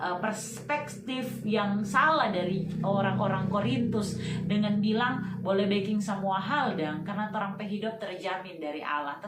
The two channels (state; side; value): identical; both; correlation 1.00